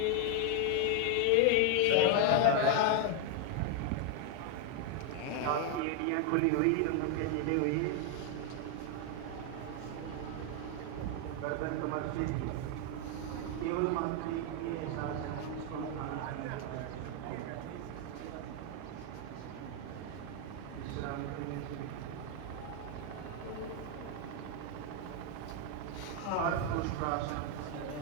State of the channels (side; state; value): both; different; correlation 0.01